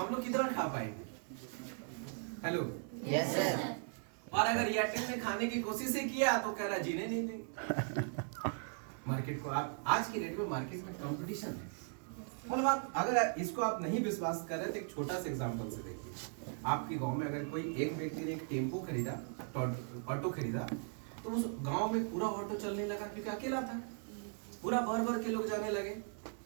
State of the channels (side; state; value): left; silent; 52 dB below the other